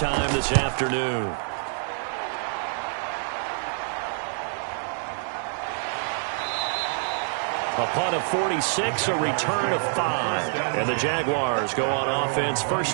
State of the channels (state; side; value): silent; left; 61 dB below the other